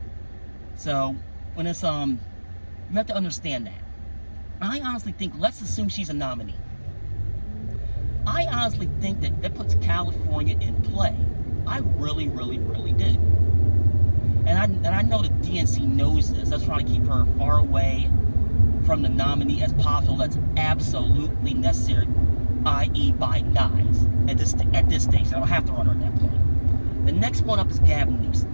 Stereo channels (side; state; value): both; inverted; correlation -1.00